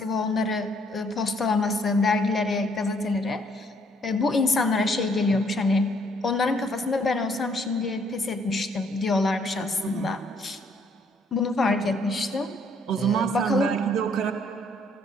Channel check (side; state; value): both; normal; correlation 0.66